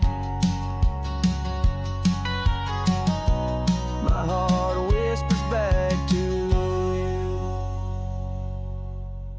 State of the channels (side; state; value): both; identical; correlation 1.00